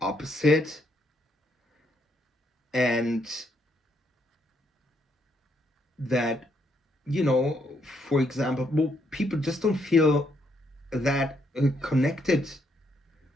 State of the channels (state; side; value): normal; both; correlation 0.74